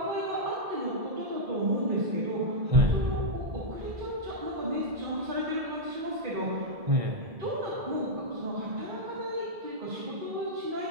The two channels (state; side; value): late; left; 1.7 ms